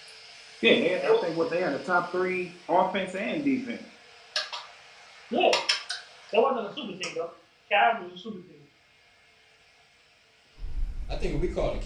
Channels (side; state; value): both; identical; correlation 1.00